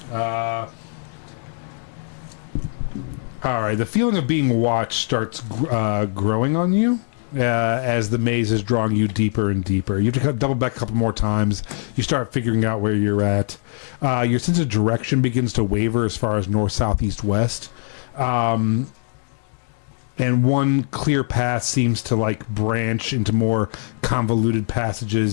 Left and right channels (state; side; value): silent; right; digital silence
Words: All right. The feeling of being watched starts growing on you as the maze is drawing you deeper and deeper. You have to double back a couple more times. You start figuring out where you're at. Your sense of direction begins to waver as far as north, south, east, west. And one clear path seems to like branch into more convoluted